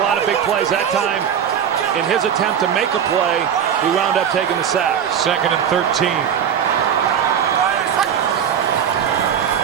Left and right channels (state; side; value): quieter; left; 8.4 dB